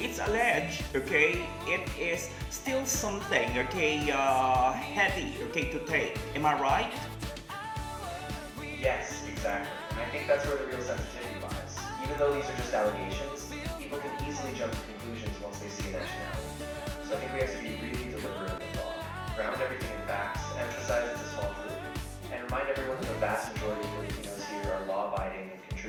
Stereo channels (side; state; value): both; identical; correlation 1.00